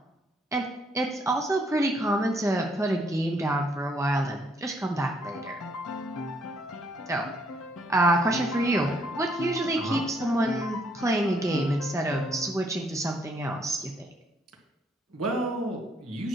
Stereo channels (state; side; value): normal; both; correlation 0.70